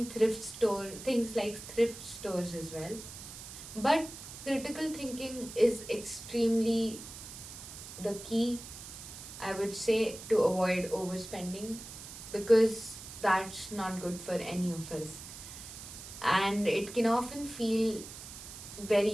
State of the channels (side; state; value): right; noise; hiss, 13 dB below the sound